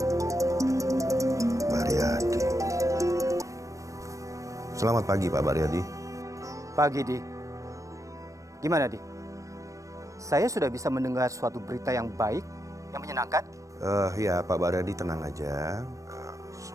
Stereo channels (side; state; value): left; late; 0.16 ms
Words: Baryadi. Selamat pagi, Pak Baryadi. Pagi, Di. Gimana, Di? Saya sudah bisa mendengar suatu berita yang baik, yang menyenangkan. Ya, Pak Baryadi tenang aja.